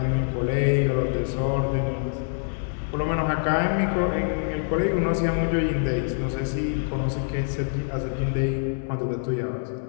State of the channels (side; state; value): right; silent; 62 dB below the other